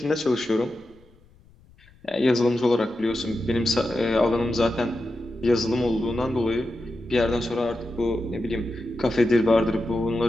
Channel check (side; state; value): left; noise; rumble, 28 dB below the sound